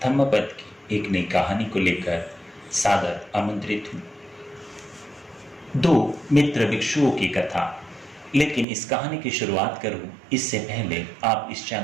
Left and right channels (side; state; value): left; drops out; at 8.7 s